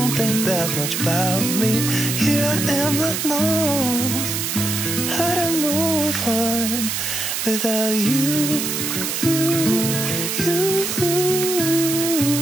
think that much about me. Here I am, not knowing how to move on without you.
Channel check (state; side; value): noise; right; hiss, 2 dB below the sound